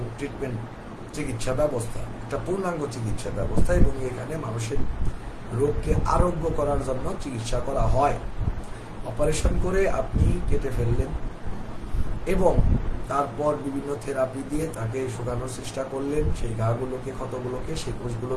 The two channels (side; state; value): both; identical; correlation 1.00